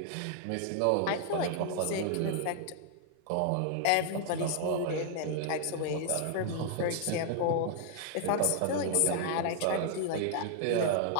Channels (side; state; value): both; different; correlation 0.00